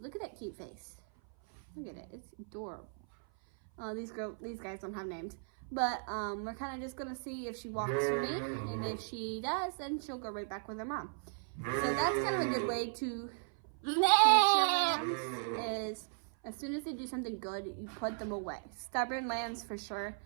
at that cute face. Look at it, it's adorable. These guys don't have names. But we're kind of just gonna see if she walks for me. And if she does, then she'll go right back with her mom. So that's kind of a good way to teach your lambs is, as soon as they do something good, you put them away. Stubborn lambs for sure.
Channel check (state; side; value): silent; left; 53 dB below the other